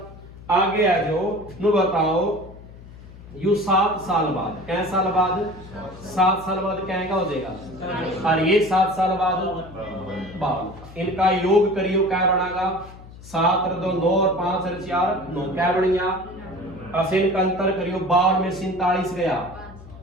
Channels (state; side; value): noise; left; hum, 18 dB below the sound